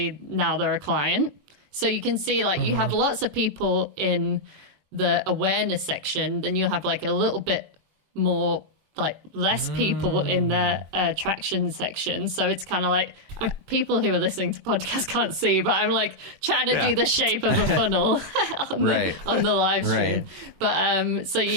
now they're a client. So you can see you have lots of people in the awareness section, then you'll have a little bit more less people in the attraction section. So it's kind of people who are listening to podcasts can't see, but I'm trying to do the shape of a funnel on the live stream. Right. But so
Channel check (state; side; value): late; left; 21 ms